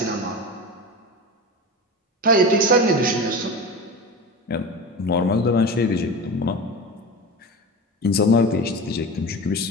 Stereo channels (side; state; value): both; normal; correlation 0.28